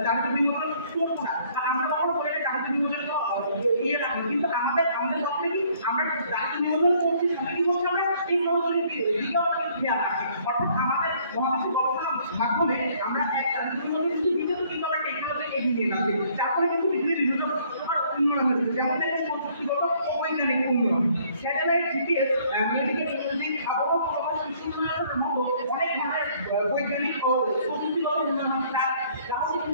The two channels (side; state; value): both; inverted; correlation -0.61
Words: জাতীয় বিনোদন করবো না, আমরা কখনো বলে জাতীয় বিনোদন ইয়ে রাখবো, কিন্তু আমাদের পক্ষে কি আমরা জাতীয় বিনোদন করছি, সাথে কি করছি আমরা এই সহযোগী দিকেও খেয়াল রাখি। অর্থাৎ আমাদের মহাদেশের গবেষণার মাধ্যমে আমরা এক জাতীয় বিনোদন কিছু দিকেও কিন্তু আমরা টেকনোলজি এগিয়ে নিয়ে যাচ্ছি, যার ফলে কিন্তু পৃথিবীর বিভিন্ন উন্নয়ন হচ্ছে, যেমন দেখেন প্রযুক্তিগত ও বৈজ্ঞানিক উন্নয়ন, স্যাটেলাইট, জিপিএস, মেডিকেল ইমেজিং, আবহাওয়া পূর্বাভাস, কৃষি উন্নয়নের মতো অনেক ধরনের বৈজ্ঞানিক ও প্রযুক্তিগত উন্নয়ন যা হচ্ছে